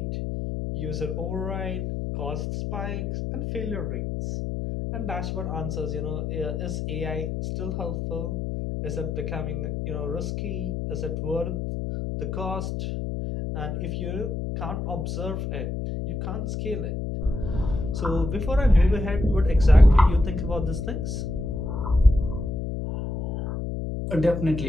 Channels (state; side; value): noise; left; hum, 3 dB below the sound